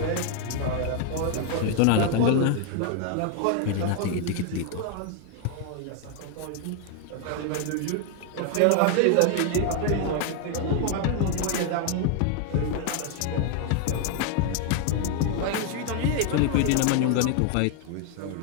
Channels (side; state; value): both; different; correlation 0.00